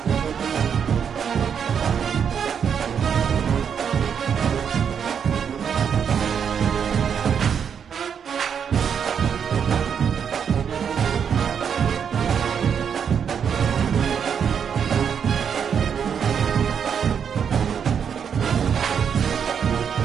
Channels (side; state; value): left; quieter; 7.5 dB